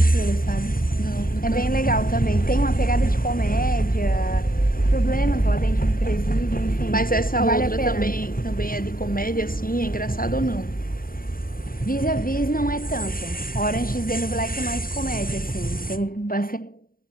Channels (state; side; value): late; right; 0.42 ms